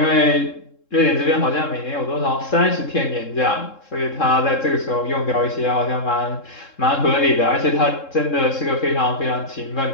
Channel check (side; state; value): right; late; 3.7 ms